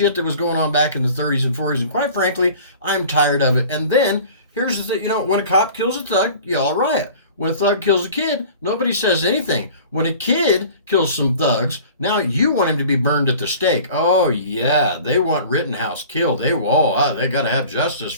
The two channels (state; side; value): inverted; both; correlation -0.44